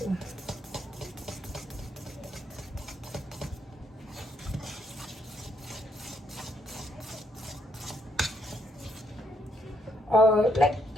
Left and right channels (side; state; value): both; normal; correlation 0.74